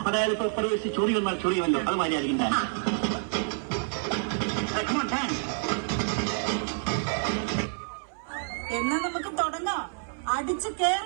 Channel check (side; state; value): left; silent; 59 dB below the other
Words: അതായത് ഇപ്പൊ പ്രവേശിച്ച് ചൊറി വന്നാൽ ചൊറി വല്ലോ, അത് മാതിരിയായിരിക്കും ഡാൻസ്. എന്നാ നമുക്ക് തുടങ്ങാം. അടിച്ചു